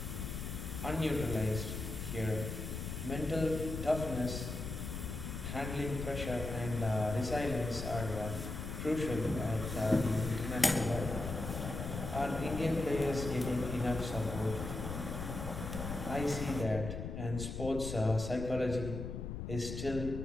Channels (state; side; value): noise; left; rumble, 5 dB below the sound